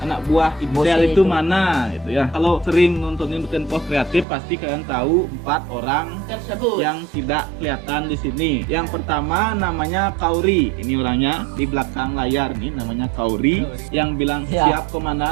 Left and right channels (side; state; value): left; drops out; at 4.2 s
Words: anak buah Ibsel itu mana? Gitu ya. Kalau sering nontonin Tempo Kreatif pasti kalian tahu 4 orang yang tidak kelihatan di sini. Yang pertama namanya Kauri. Ini orangnya di belakang layar nih, namanya Kauri. Yang bilang siap